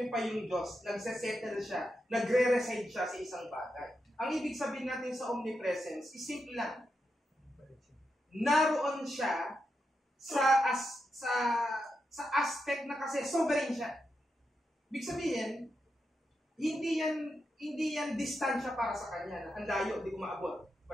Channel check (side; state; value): both; normal; correlation 0.86